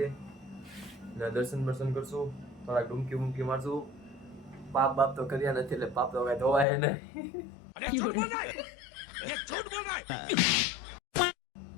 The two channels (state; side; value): drops out; right; at 6.7 s